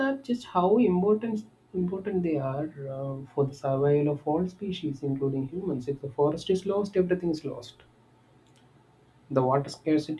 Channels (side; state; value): both; identical; correlation 1.00